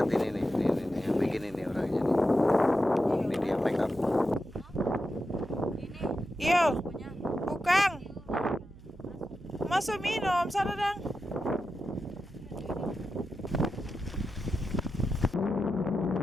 ini yang bikin ini orangnya nih. Ini dia make up. Yo, Bukang. Masuk minum, sana dang.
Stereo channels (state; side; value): noise; right; hum, 21 dB below the sound